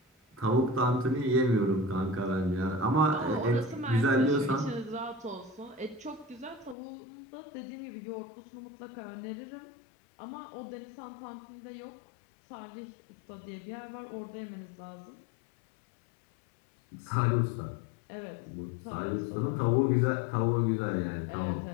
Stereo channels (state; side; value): drops out; right; at 6.8 s